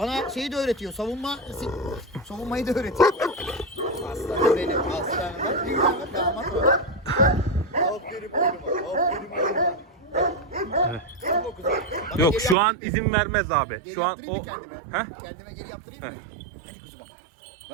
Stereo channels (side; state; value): left; drops out; at 12.6 s